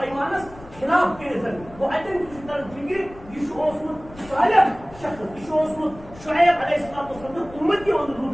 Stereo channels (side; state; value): left; noise; rumble, 19 dB below the sound